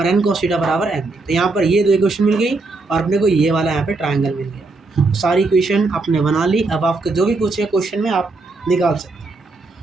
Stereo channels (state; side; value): quieter; left; 3.5 dB